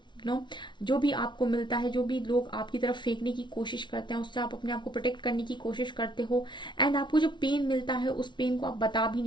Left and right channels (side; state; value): right; late; 0.23 ms